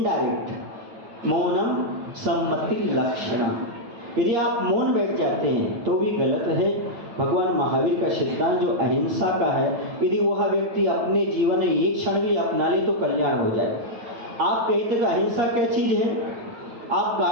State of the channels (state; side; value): late; left; 8.6 ms